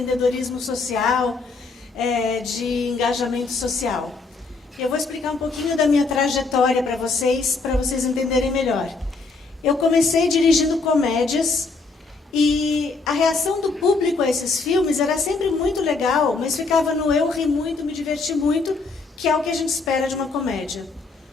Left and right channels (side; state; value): right; quieter; 4.0 dB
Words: social, de engajamento social. Eu vou explicar um pouquinho da minha trajetória para vocês entenderem melhor. Eu comecei dirigindo comédias e a reação do público a esses filmes era sempre muito legal, mas ficava no eu ri muito, me diverti muito, que é o que a gente espera de uma comédia.